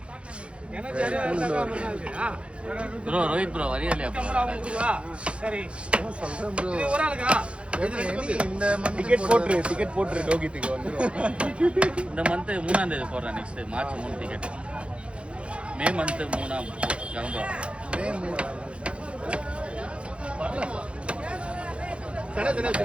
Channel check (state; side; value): late; left; 0.059 ms